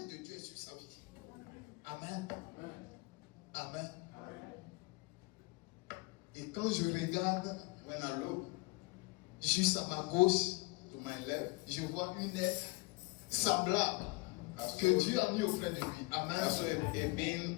de Dieu est sur sa vie. Amen. Amen. Et quand je regarde, when I look, juste à ma gauche, to my left, je vois une aide semblable que Dieu a mis auprès de lui. Amen.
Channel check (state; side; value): quieter; right; 25.2 dB